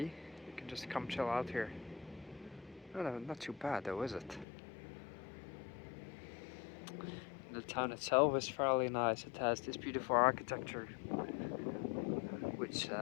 you can just come chill out here. No, not too bad though, is it? The town itself is fairly nice. It has this beautiful architecture which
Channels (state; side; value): drops out; right; at 4.5 s